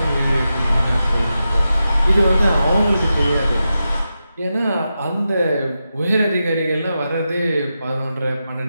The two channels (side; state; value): both; inverted; correlation -0.90